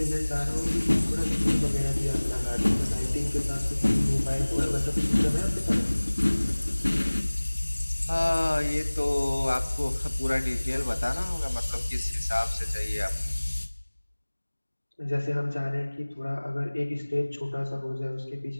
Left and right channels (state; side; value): inverted; both; correlation -1.00